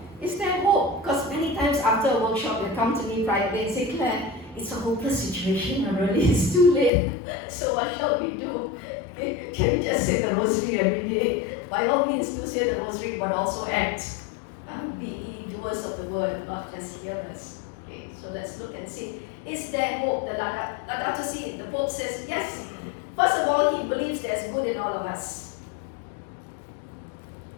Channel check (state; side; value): drops out; right; at 6.9 s